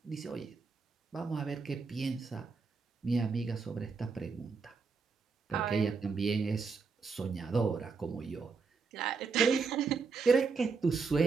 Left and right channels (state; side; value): quieter; left; 4.9 dB